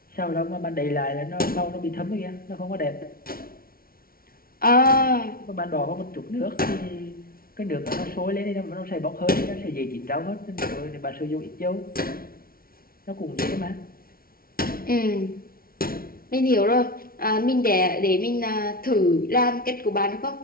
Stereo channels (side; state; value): right; late; 0.43 ms